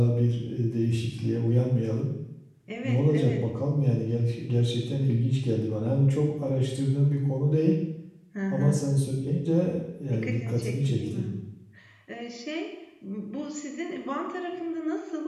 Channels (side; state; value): both; identical; correlation 1.00